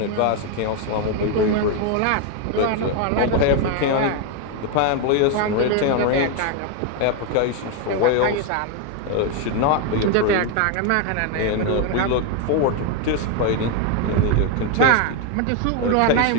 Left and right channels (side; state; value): both; different; correlation 0.01